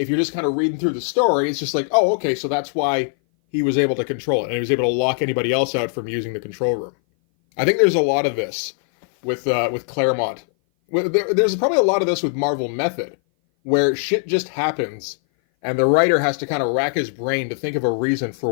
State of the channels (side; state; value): right; silent; 58 dB below the other